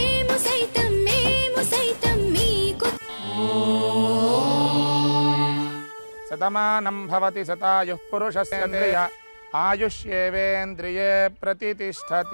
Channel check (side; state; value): both; inverted; correlation -1.00